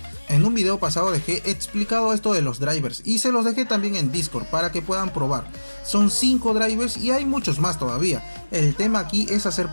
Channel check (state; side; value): inverted; both; correlation -1.00